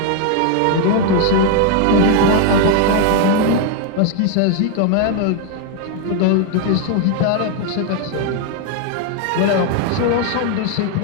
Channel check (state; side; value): different; both; correlation 0.00